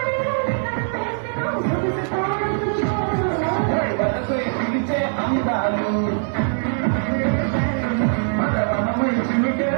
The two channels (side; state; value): left; silent; 62 dB below the other